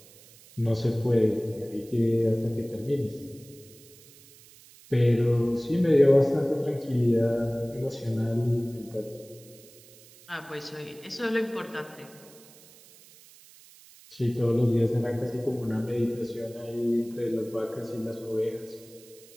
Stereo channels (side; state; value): right; noise; hiss, 23 dB below the sound